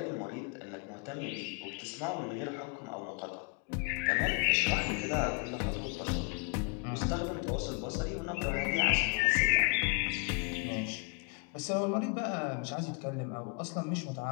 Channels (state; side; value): quieter; right; 29.0 dB